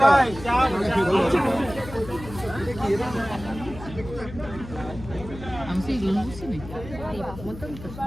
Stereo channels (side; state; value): left; noise; hum, 13 dB below the sound